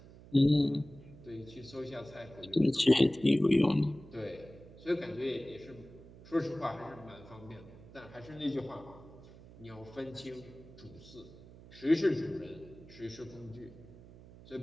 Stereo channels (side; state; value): right; noise; hum, 19 dB below the sound